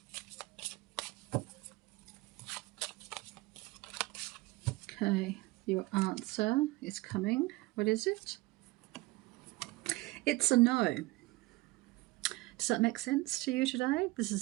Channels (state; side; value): quieter; left; 20.9 dB